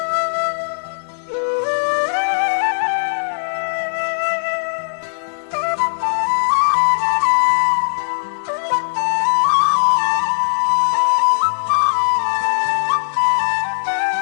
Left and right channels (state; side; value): silent; right; 67 dB below the other